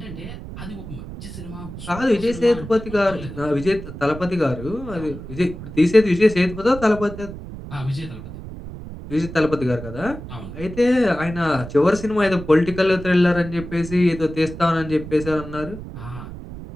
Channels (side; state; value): right; noise; rumble, 11 dB below the sound